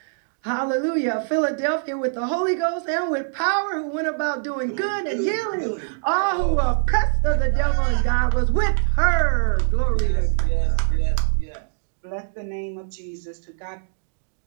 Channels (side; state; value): left; silent; digital silence